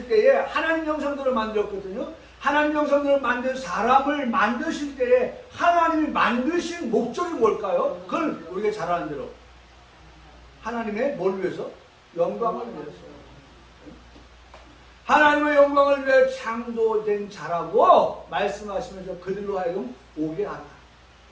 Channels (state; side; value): identical; both; correlation 1.00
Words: 때에 하나님 형상대로 만들었거든요. 하나님 형상대로 만든 사람을 만드실 때에 하나님이 만드신 목적이 뭘까요? 그걸 우리가 잘 아는 대로 하나님의 뭘 위해서? 영광을 위해서. 하나님의 영광을 위해 창조된 자라고 말씀하시면서 그들로 하여금 오게 하라.